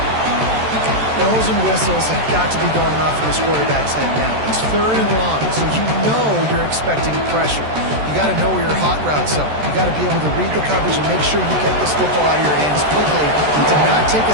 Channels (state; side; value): late; left; 14 ms